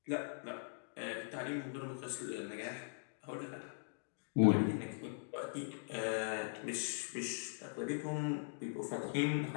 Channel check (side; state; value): right; silent; digital silence